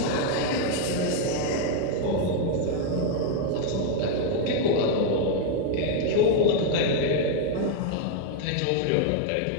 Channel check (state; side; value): different; both; correlation 0.01